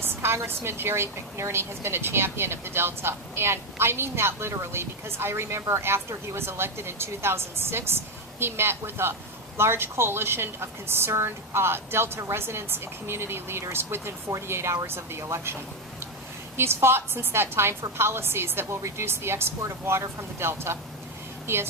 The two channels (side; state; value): both; normal; correlation 0.08